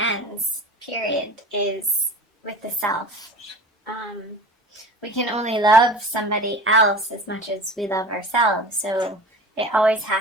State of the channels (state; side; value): normal; both; correlation 0.37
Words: period, is with the self. We can only love somebody else as much as we love ourselves, so it always